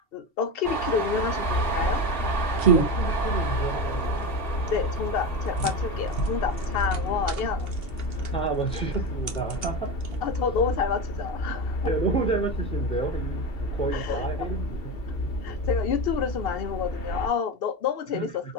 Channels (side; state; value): right; late; 2.7 ms